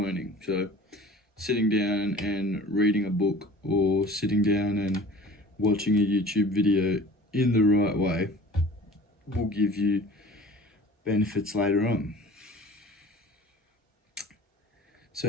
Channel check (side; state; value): both; normal; correlation 0.44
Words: So sitting down and reading a book, or sitting down and watching a YouTube video in the right way will give you benefits later on.